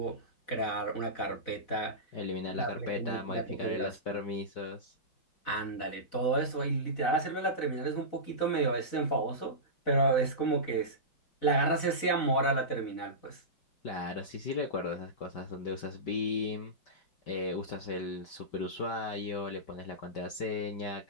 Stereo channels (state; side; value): late; right; 4.0 ms